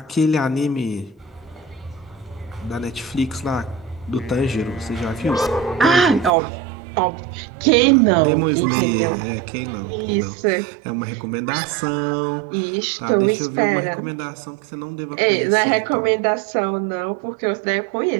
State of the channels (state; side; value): drops out; left; at 6.3 s